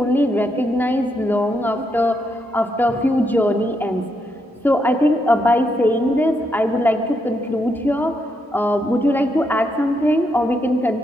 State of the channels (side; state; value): both; normal; correlation 0.79